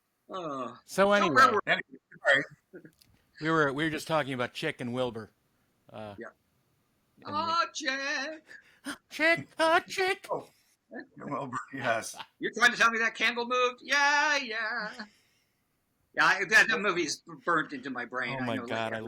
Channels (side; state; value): both; identical; correlation 1.00